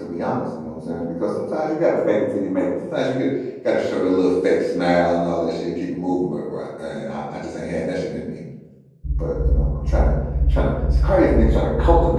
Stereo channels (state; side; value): identical; both; correlation 1.00